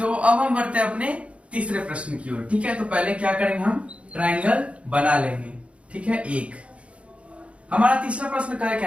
अब हम बढ़ते हैं अपने तीसरे प्रश्न की ओर, ठीक है। तो पहले क्या करेंगे, हम ट्रायंगल बना लेंगे, ठीक है। एक हमारा तीसरा प्रश्न क्या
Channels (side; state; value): left; late; 0.062 ms